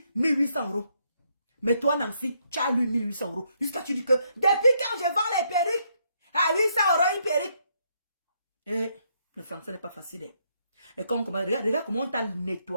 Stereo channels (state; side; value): inverted; both; correlation -0.74